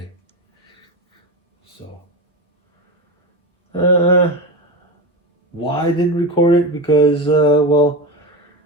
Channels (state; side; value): normal; both; correlation 0.20